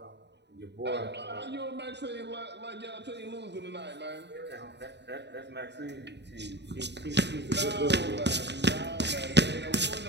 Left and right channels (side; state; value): left; late; 0.50 ms